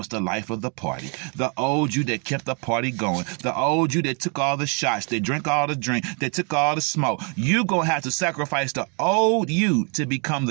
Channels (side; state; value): left; quieter; 37.0 dB